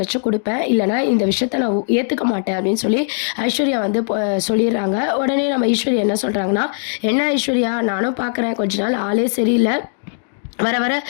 கொடுப்பேன், இல்லைனா இந்த விஷயத்த நான் ஏற்றுக்க மாட்டேன் அப்படின்னு சொல்லி ஐஸ்வர்யா வந்து சொல்லிடுறாங்க. உடனே நம்ம ஐஸ்வர்யா என்ன சொல்கிறாங்கன்னா, என்ன ஐஸ்வர்யா, நானும் பார்க்குறேன் கொஞ்ச நாள் ஆளே சரியில்லை, வர வர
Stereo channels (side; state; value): right; silent; digital silence